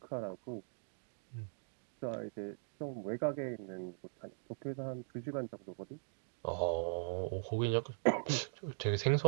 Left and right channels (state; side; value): silent; left; digital silence